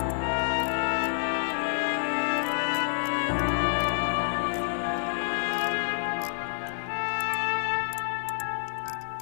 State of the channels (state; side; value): silent; right; digital silence